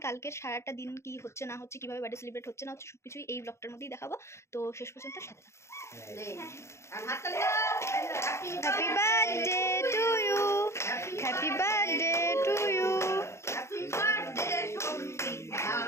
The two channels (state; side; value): late; right; 0.13 ms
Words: কালকের সারাটা দিন কি হচ্ছে না হচ্ছে, কিভাবে বার্থডে সেলিব্রেট হচ্ছে না হচ্ছে, সবকিছুই এই ব্লগটার মধ্যেই দেখাবো। তো শেষ পর্যন্ত সাথে থাকো। Happy birthday to you, happy birthday to you